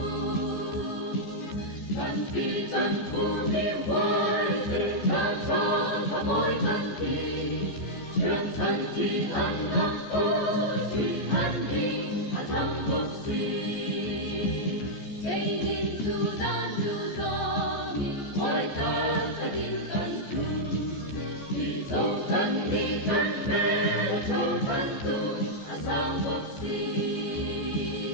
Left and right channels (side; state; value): right; late; 14 ms